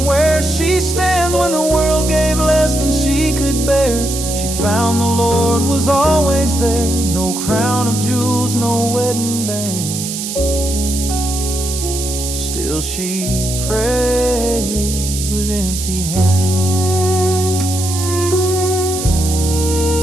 where she stands. When the world gave less than she could bear, she found the Lord was always there. No crown of jewels, no wedding bands, still she prayed with empty hands.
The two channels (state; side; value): noise; right; hiss, 6 dB below the sound